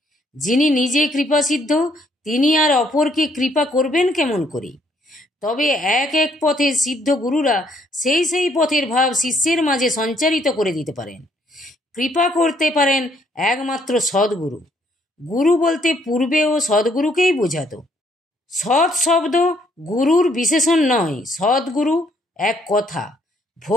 যিনি নিজে কৃপাসিদ্ধ তিনি আর অপরকে কৃপা করবেন কেমন করে? তবে এক এক পথের সিদ্ধ গুরুরা সেই পথের ভাব শিষ্যের মাঝে সঞ্চারিত করে দিতে পারেন। কৃপা করতে পারেন একমাত্র সদ্গুরু। গুরু বলতে পূর্বেও সদ্গুরুকেই বোঝাতো। সৎ শব্দ গুরুর বিশেষণ নয়, সদ্গুরু এক কথা।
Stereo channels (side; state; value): both; normal; correlation 0.68